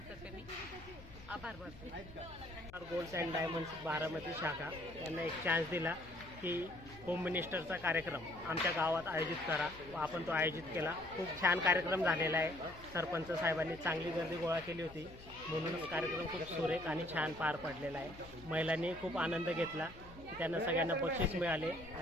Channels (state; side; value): noise; left; hum, 19 dB below the sound